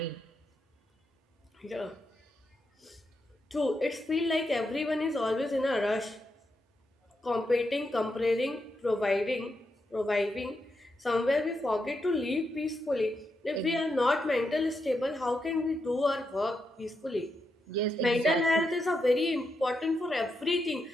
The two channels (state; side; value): normal; both; correlation 0.84